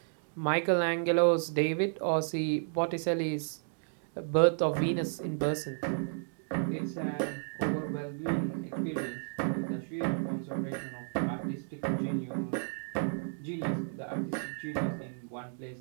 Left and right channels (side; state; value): left; silent; digital silence